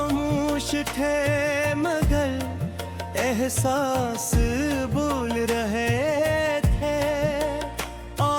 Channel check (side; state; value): both; identical; correlation 1.00